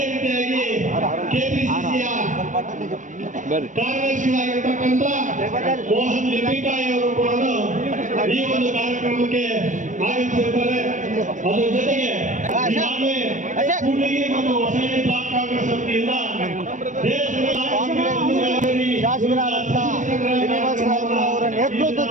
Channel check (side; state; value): left; late; 0.37 ms